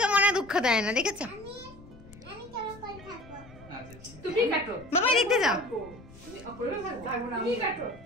মনে দুঃখ দেয় না, দেখেছো? তুমি কাটো বাবা, দেখতে যাও। তুমি কাটো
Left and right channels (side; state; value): left; noise; rumble, 20 dB below the sound